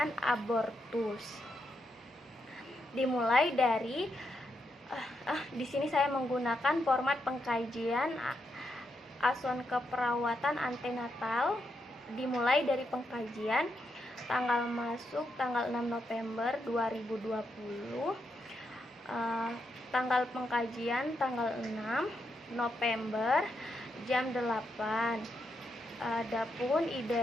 abortus. Dimulai dari di sini saya menggunakan format pengkajian asuhan keperawatan antenatal. Dimulai dari pengkajian, tanggal masuk tanggal 6 November 2020, tanggal pengkajian tanggal 6 November jam 8. Adapun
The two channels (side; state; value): both; normal; correlation 0.82